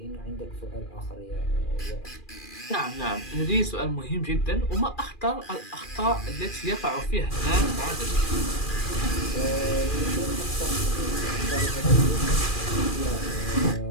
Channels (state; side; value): late; right; 2.4 ms